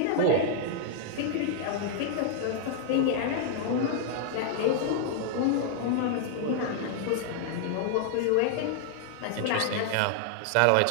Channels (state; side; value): different; both; correlation 0.00